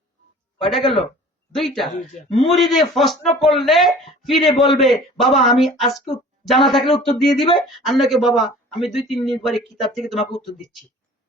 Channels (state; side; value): normal; both; correlation 0.46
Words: কয়টা গেল? 2টা। দুইটা। মুরিদে প্রশ্ন করলে ফিরে বলবে, বাবা আমি আজকে জানা থাকলে উত্তর দিয়ে দিবে, আর নাকি বাবা আমি 2-3 দিন পরে কিতাব থেকে তোমাকে উত্তর দিচ্ছি।